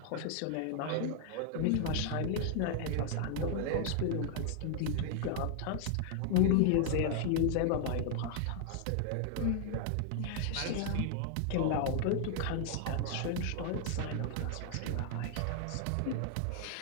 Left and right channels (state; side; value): different; both; correlation 0.00